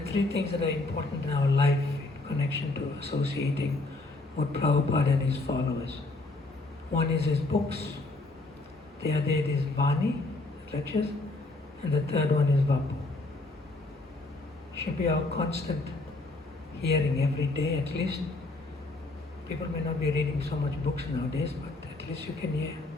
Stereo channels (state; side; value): quieter; right; 3.1 dB